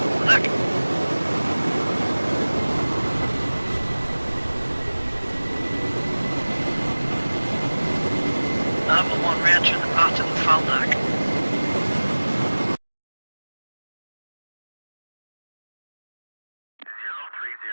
Look. Number 1 re-entering the pattern and foul deck.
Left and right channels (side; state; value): both; inverted; correlation -1.00